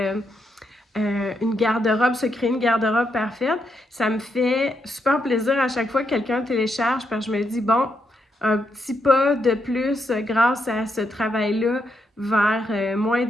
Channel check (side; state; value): both; normal; correlation 0.80